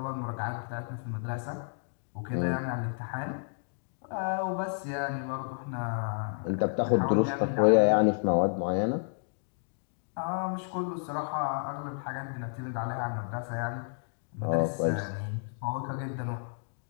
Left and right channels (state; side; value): silent; right; digital silence